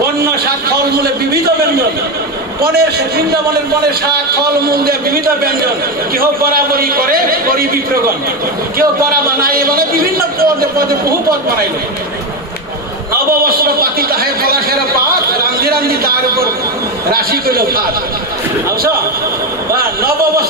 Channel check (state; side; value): normal; both; correlation 0.13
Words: বন্য শাক ফলমূলে বিবিধ ব্যঞ্জন, বৃন্দাবনের বনের শাক ফলমূল দিয়ে বিবিধ ব্যঞ্জন। কেহ বরাবরই করে করি বিপ্রগণ, কেউ বরা বানায়, মানে বিভিন্ন পদে পদে বহু পদ বানাইল। নববস্ত্র পাতি তাহে পলাশের পাত, রান্ধি রান্ধি তার উপর রাশি কইল ভাত। বুঝছো,